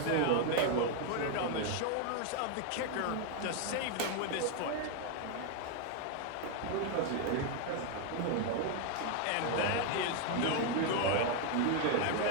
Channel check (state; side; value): different; both; correlation 0.01